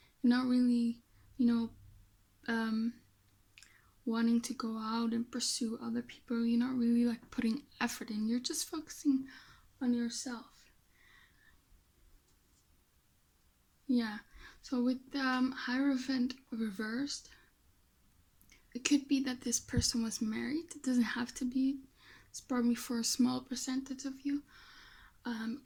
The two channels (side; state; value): both; identical; correlation 1.00